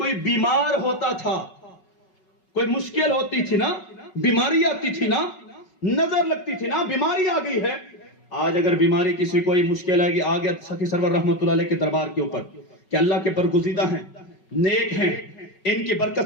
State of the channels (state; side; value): late; right; 5.3 ms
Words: بیمار ہوتا تھا، کوئی مشکل ہوتی تھی نا، بیماری آتی تھی نا، نظر لگتی تھی نا، بیماری آ گئی ہے۔ آج اگر بیماری کسی کوئی مشکل آئے گی، آ گیا سخی سرور رحمت اللہ علیہ کے دربار کے اوپر کہ اللہ کے برگزیدہ ہیں، نیک ہیں، ان کی